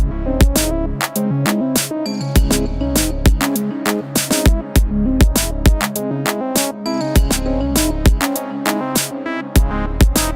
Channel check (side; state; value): both; identical; correlation 1.00